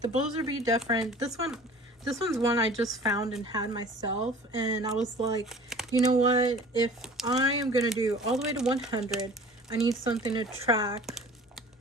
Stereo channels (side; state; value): both; normal; correlation 0.45